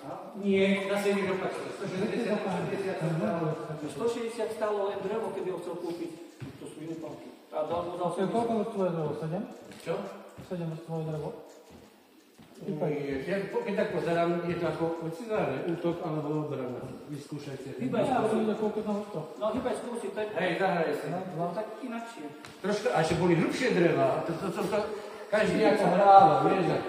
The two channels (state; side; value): identical; both; correlation 1.00